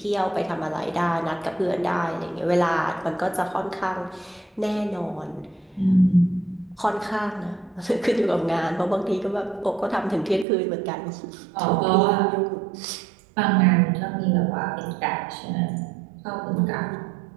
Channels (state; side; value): drops out; left; at 10.5 s